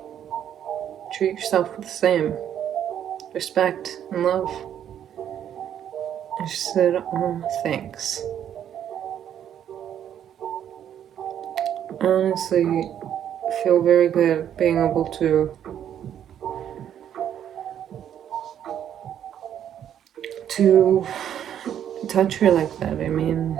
Treat yourself with the same respect and love. And she said, oh, thanks. I honestly feel very good being able to touch her like that. I mean,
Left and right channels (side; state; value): left; quieter; 9.8 dB